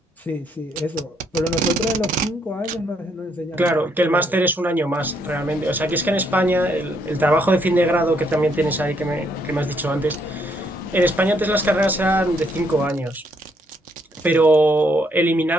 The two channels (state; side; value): normal; both; correlation 0.72